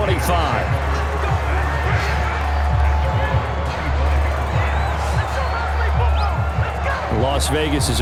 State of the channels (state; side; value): identical; both; correlation 1.00